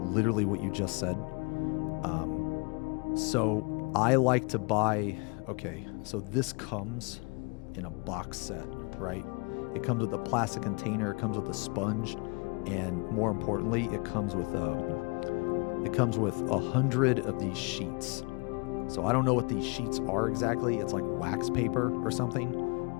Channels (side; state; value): right; quieter; 31.3 dB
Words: what you just said. So I like to buy. Okay, so this comes in a box set, right? It comes with a plastic container. It comes with a sponge, and more importantly, it comes with 100 of these sheets. So I don't know what these sheets are exactly. It's like wax paper or something.